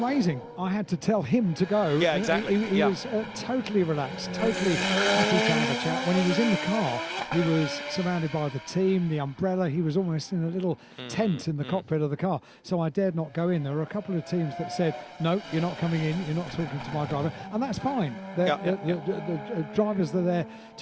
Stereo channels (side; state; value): both; identical; correlation 1.00